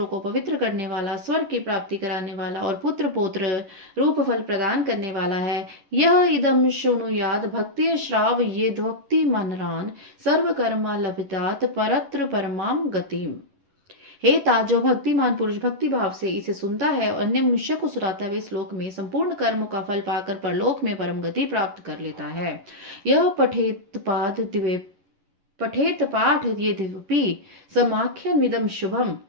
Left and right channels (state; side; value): late; left; 11 ms